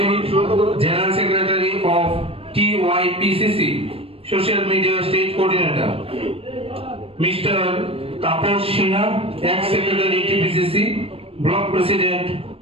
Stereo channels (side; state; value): left; late; 0.28 ms